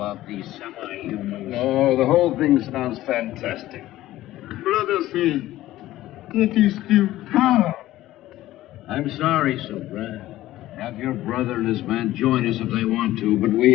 these semi-humans. Oh, the whole thing sounds fantastic. Brother say, Yeti steal Tara. I'm sorry, Subra. Have your brother and his men join us if they want to, but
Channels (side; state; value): right; quieter; 15.3 dB